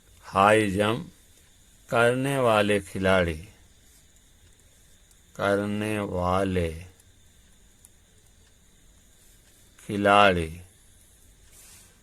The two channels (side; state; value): both; identical; correlation 1.00